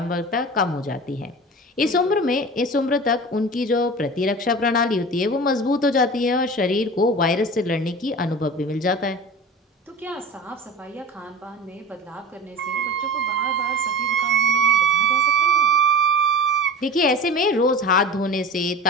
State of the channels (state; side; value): normal; both; correlation 0.33